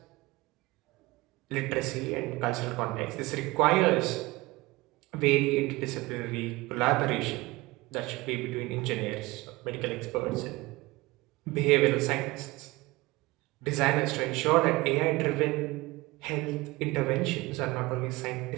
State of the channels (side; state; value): left; quieter; 21.4 dB